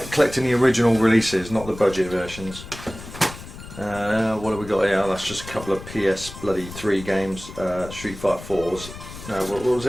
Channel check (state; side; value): noise; left; rumble, 14 dB below the sound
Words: collecting the original releases, not the budget versions. What have we got here? That's just a couple of PS3 games. Street Fighter 4s. No, what was